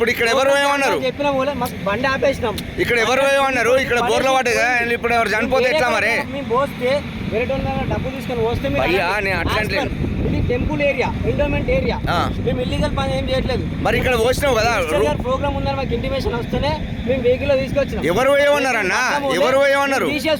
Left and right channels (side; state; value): both; identical; correlation 1.00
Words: ఇక్కడ ఎవరు ఏమన్నారు? చెప్పిన మాకు బండి ఆపేసినాం. ఇక్కడ ఎవరు ఏమన్నారు? ఇక్కడ బోర్ల వాటగా ఇప్పుడు ఎవరు చనిపోతే ఎట్లా మరి? మేము పోస్తే వేరే డబ్బు తీసుకొని వస్తే అట్లా ఇది టెంపుల్ ఏరియా, ఎండోమెంట్ ఏరియా, మేము ఇల్లీగల్ పని ఏం చేయట్లేదు. మరి ఇక్కడ వచ్చినావు కదా, ప్రోగ్రామ్ ఉందని మాకు ఇంటిమేషన్ వస్తేనే మేము వెహికల్ లో తీసుకొచ్చినాం. ఎవరు ఏమన్నారు అన్న? ఎవరు ఏమన్నారు?